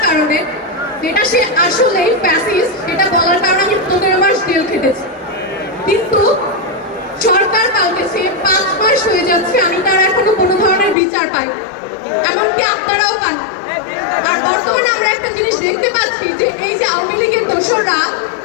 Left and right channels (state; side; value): drops out; right; at 11.0 s